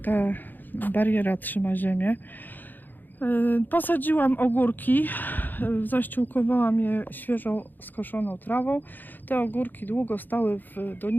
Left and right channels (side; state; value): right; late; 0.088 ms